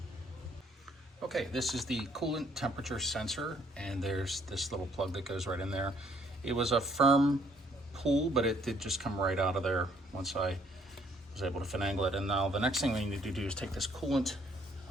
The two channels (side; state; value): both; normal; correlation 0.64